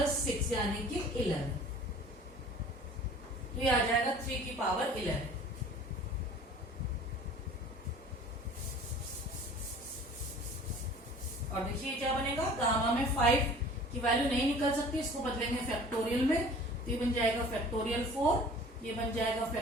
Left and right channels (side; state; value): both; normal; correlation 0.46